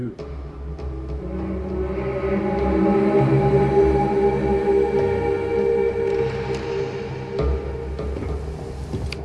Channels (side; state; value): both; identical; correlation 1.00